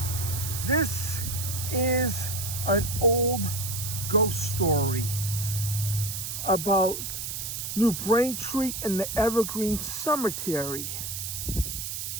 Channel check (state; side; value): noise; right; hiss, 5 dB below the sound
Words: this is an old ghost story about New Braintree and the Evergreen Cemetery.